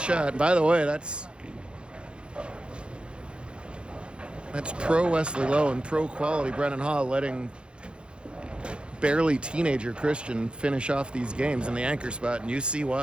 By the way, that's pro Wesley Lowe and pro quality Brennan Hall letting barely teenager Christian finish off these games in the anchor spot, and you see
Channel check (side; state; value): left; late; 0.055 ms